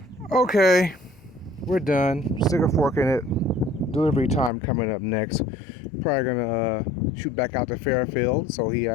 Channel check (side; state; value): right; drops out; at 4.5 s